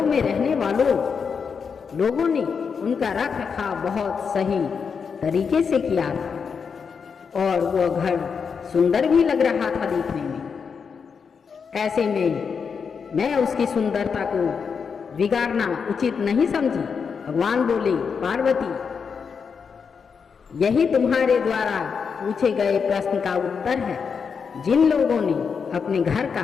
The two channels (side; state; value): right; quieter; 6.0 dB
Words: में रहने वालों लोगों ने उनका रख रखाव बहुत सही तरीके से किया था और वह घर सुंदर भी लग रहा था देखने में। ऐसे में मैं उसकी सुंदरता को बिगाड़ना उचित नहीं समझी। भगवान बोले, पार्वती, यही तुम्हारे द्वारा पूछे गए प्रश्न का उत्तर है। जिन लोगों ने अपने घर